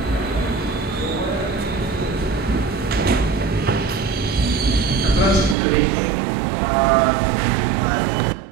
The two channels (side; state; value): left; drops out; at 5.6 s